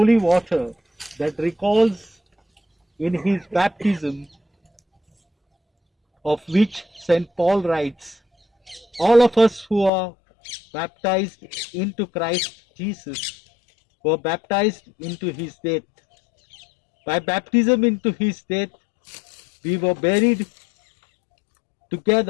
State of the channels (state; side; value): drops out; right; at 9.9 s